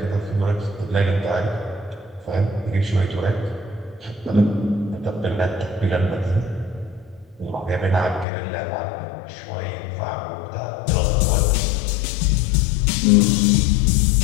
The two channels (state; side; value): drops out; right; at 8.2 s